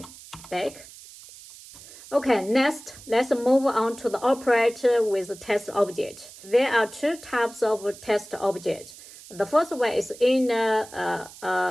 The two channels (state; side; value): noise; right; hiss, 18 dB below the sound